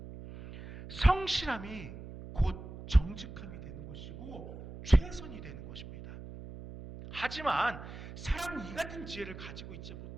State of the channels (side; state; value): right; noise; hum, 12 dB below the sound